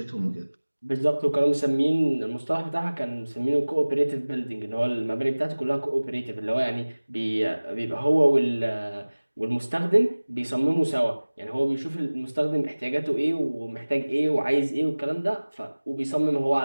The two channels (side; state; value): both; inverted; correlation -1.00